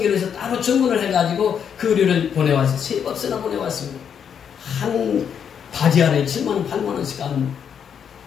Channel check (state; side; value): quieter; right; 7.8 dB